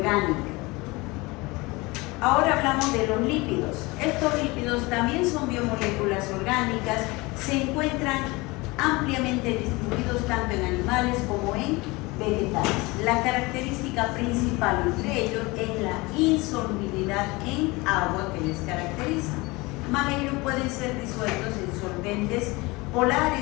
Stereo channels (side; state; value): right; quieter; 23.5 dB